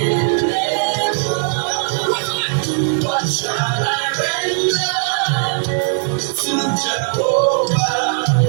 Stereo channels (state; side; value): silent; left; 67 dB below the other